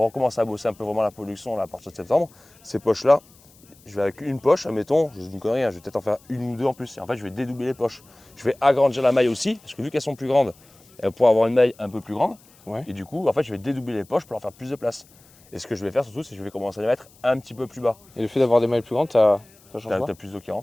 recommence à bosser un peu vraiment la production là, à partir de septembre, ces poches-là, je vais avec une poche, admettons, je dis une connerie, hein, je vais peut-être en faire une ou deux en plus. Et en fait, je vais dédoubler les poches. Je vais agrandir la maille aussi, parce que vu qu'elles sont plus grandes, elles vont pouvoir avoir une maille un peu plus grande. Ouais. Et du coup, en fait, je vais dédoubler les poches pour leur faire plus de place. Et ce que je vais faire surtout, c'est que je vais commencer à les mettre un petit peu plus bas. Et le fait d'avoir des mailles plus grandes, ça change T'as pas? plus d'eau qui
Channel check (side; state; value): left; noise; hiss, 28 dB below the sound